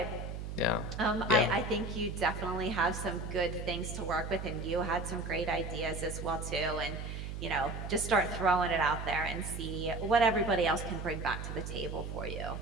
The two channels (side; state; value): right; noise; hum, 6 dB below the sound